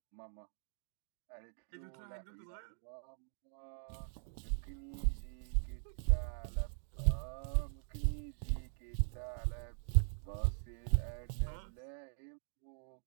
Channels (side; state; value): left; silent; digital silence